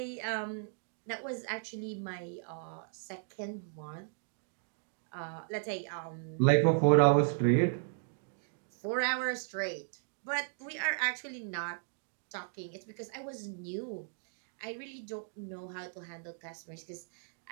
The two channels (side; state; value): left; silent; digital silence